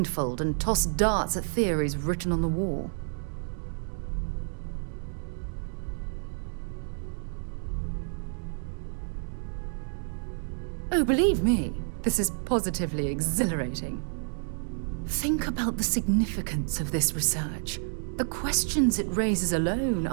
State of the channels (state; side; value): silent; left; digital silence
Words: and toss darts at theories written on the wall. Oh, believe me, this is positively exhilarating. Think about the significance of this research. The questions it raises alone